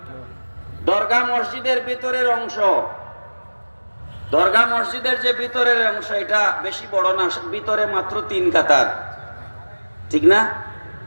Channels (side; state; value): both; inverted; correlation -1.00